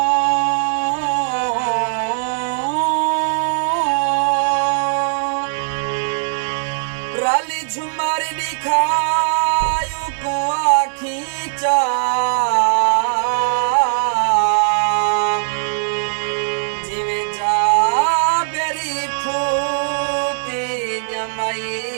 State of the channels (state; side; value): silent; left; 66 dB below the other